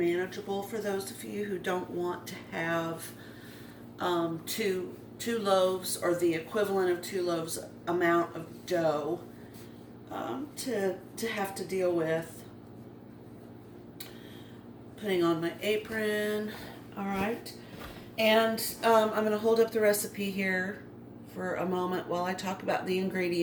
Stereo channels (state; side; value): identical; both; correlation 1.00